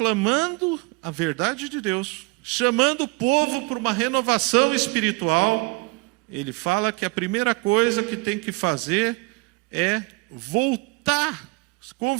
a verdade de Deus, chamando o povo para uma renovação espiritual. Ele fala que a primeira coisa que tem que fazer é voltar,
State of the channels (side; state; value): left; quieter; 26.4 dB